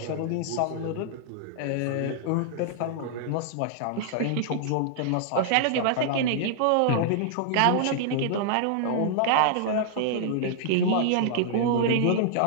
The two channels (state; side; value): different; both; correlation -0.01